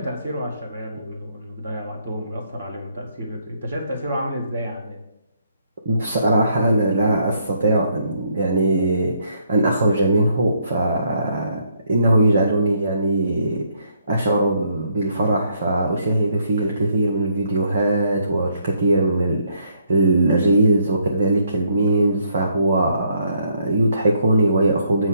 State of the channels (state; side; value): inverted; both; correlation -0.71